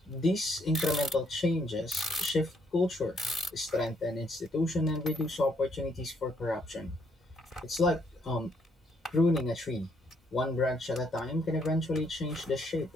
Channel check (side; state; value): both; normal; correlation 0.71